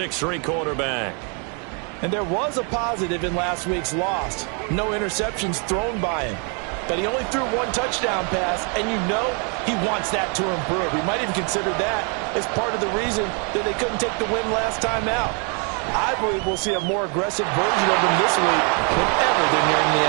quarterback. And there was a positive in last week's loss. No interceptions thrown by him. But he only threw 1 touchdown pass, and you know he wants that to improve. He might even consider that as part of the reason that they couldn't take the win last time out. I believe we'll see a more aggressive version of him this week whenever they're nearing the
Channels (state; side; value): quieter; left; 37.2 dB